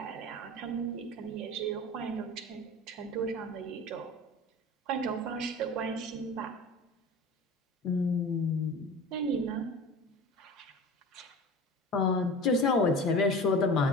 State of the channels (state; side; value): normal; both; correlation 0.36